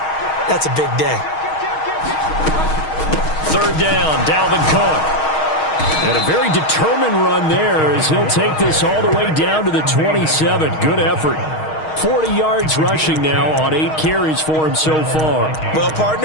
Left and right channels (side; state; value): right; late; 6.4 ms